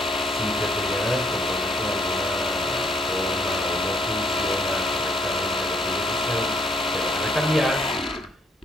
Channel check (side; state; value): both; normal; correlation 0.68